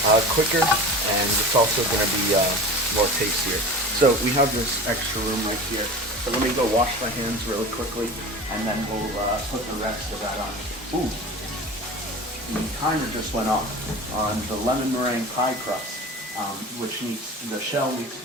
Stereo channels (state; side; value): normal; both; correlation 0.34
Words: quicker, and it's also going to be more tastier. So we have this extra room right here. So let me go wash my hands really quickly, and then we'll put the rest of that on. Ooh, the timer just went off on the lemon meringue pie crust, which the shell needs